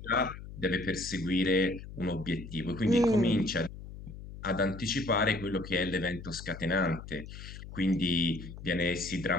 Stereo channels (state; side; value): noise; left; hum, 13 dB below the sound